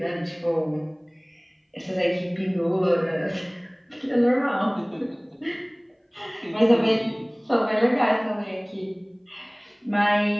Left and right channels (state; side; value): identical; both; correlation 1.00